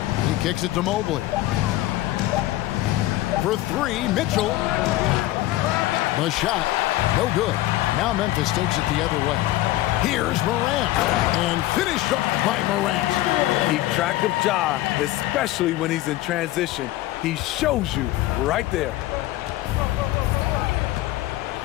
He kicks it to Mobley. For three, Mitchell. The shot, no good. Now Memphis takes it the other way. Here's Morant, and finished up by Morant. Keep track of Ja, especially when he's in transition. He shows you right there.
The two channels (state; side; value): quieter; right; 16.3 dB